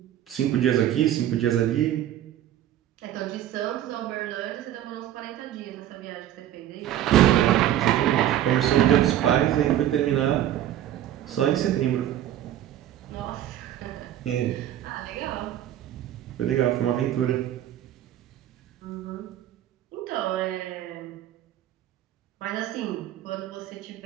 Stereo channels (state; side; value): quieter; left; 12.0 dB